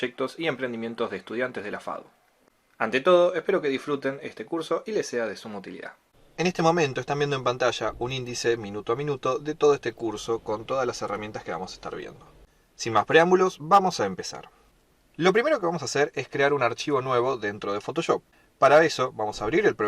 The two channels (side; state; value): both; identical; correlation 1.00